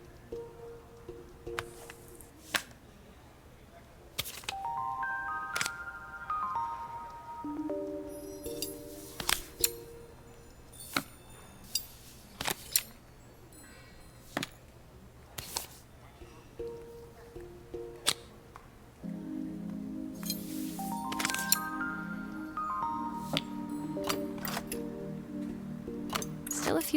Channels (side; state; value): both; identical; correlation 1.00